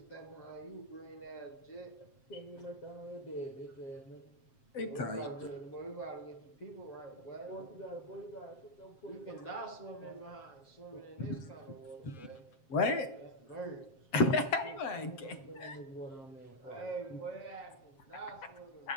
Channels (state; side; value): late; right; 7.5 ms